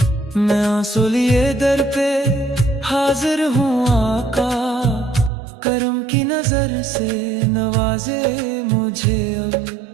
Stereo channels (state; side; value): drops out; left; at 5.3 s